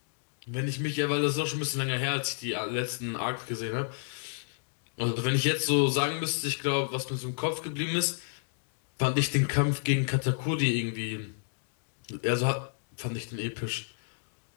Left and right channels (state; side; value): silent; right; digital silence